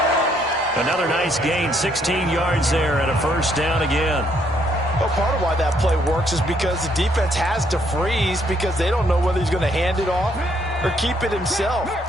Another nice gain, 16 yards there and a first down again. Well, part of why that play works is because the defense has to freeze because they don't know whether he's going to hand it off or keep it himself.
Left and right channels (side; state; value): both; normal; correlation 0.70